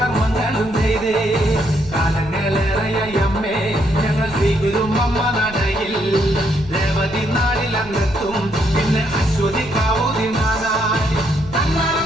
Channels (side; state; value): right; noise; rumble, 17 dB below the sound